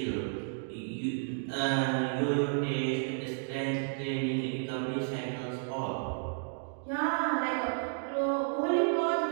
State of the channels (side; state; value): left; silent; digital silence